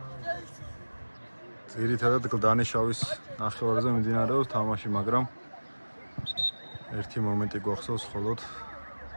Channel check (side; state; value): both; inverted; correlation -1.00